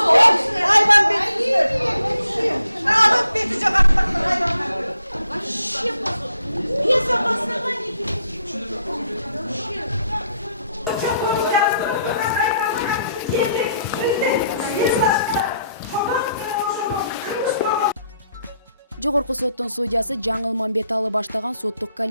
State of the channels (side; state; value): both; inverted; correlation -0.73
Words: Жогорку соттун судьясы Жаңыл Мамбеталы баштаган соттук